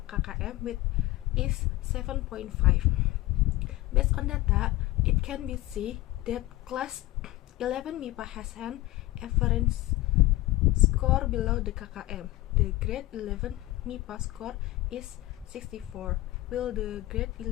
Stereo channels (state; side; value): quieter; right; 18.1 dB